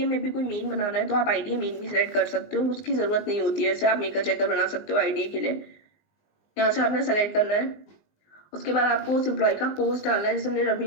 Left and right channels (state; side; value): late; right; 19 ms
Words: में भी कोई मेन बनाना है तो आप IDA मेन भी सेलेक्ट कर सकते हो, उसकी जरूरत नहीं होती है। जैसे आप मेकर चेकर बना सकते हो IDA के लिए। यहाँ से आपने सेलेक्ट करना है। उसके बाद आपको उस एम्प्लॉय का पोस्ट डालना है। जैसे हमने